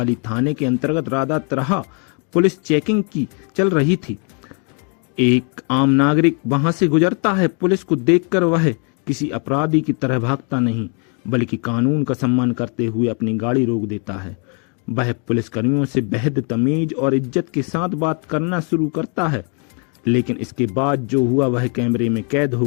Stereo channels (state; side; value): quieter; right; 38.1 dB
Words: थाने के अंतर्गत राधा तरह पुलिस चेकिंग की चल रही थी। एक आम नागरिक वहां से गुजरता है। पुलिस को देखकर वह किसी अपराधी की तरह भागता नहीं बल्कि कानून का सम्मान करते हुए अपनी गाड़ी रोक देता है। वह पुलिसकर्मियों से बेहद तमीज और इज्जत के साथ बात करना शुरू करता है, लेकिन इसके बाद जो हुआ वह कैमरे में कैद हो